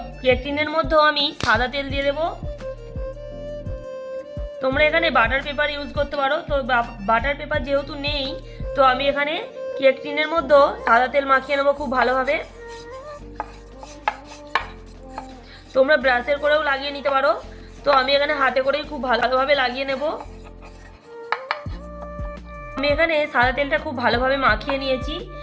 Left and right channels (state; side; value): identical; both; correlation 1.00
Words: কেক টিনের মধ্যেও আমি সাদা তেল দিয়ে দেব। তোমরা এখানে বাটার পেপার ইউজ করতে পারো। তো বাটার পেপার যেহেতু নেই, তো আমি এখানে কেক টিনের মধ্যেও সাদা তেল মাখিয়ে নেবো খুব ভালোভাবে। তোমরা ব্রাশের করেও লাগিয়ে নিতে পারো। তো আমি এখানে হাতে করেই খুব ভালোভাবে লাগিয়ে নেব। আমি এখানে সাদা তেলটা খুব ভালোভাবে মাখিয়ে নিয়েছি।